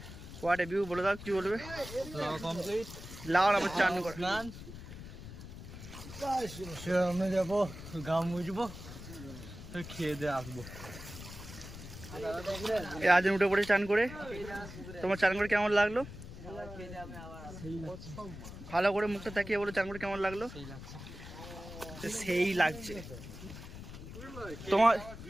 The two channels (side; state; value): left; noise; rumble, 12 dB below the sound